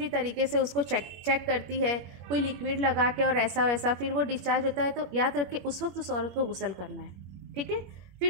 तरीके से उसको चेक करती है, कोई लिक्विड लगा के और ऐसा वैसा, फिर वो डिस्चार्ज होता है। तो याद रखिए उस वक्त उस औरत को गुस्ल करना है, ठीक है।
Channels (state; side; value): late; left; 21 ms